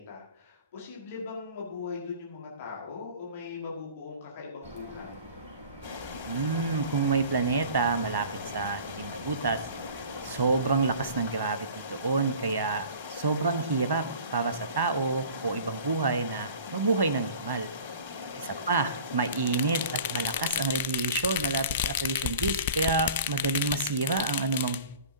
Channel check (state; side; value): inverted; both; correlation -0.43